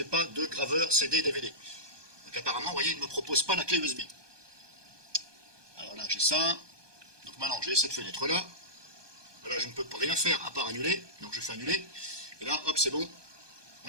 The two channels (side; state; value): left; late; 1.2 ms